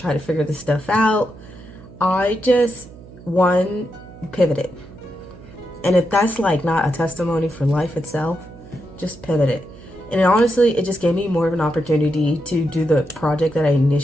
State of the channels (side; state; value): right; noise; hum, 19 dB below the sound